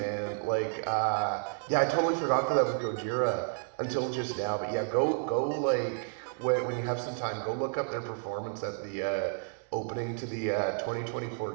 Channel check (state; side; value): silent; left; 57 dB below the other